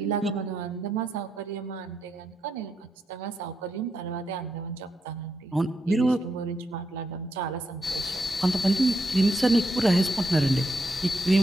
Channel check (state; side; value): normal; both; correlation 0.82